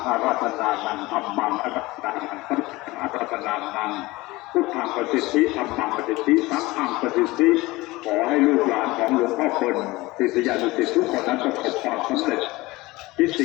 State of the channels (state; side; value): quieter; right; 20.7 dB